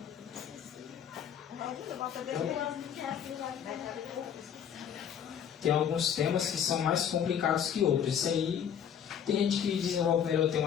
Tem alguns temas que são mais complicados que outros. Isso aí, tem gente que desenvolve melhor o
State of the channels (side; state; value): right; quieter; 8.6 dB